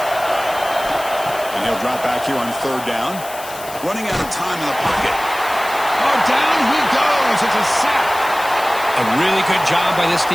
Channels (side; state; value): left; noise; hiss, 14 dB below the sound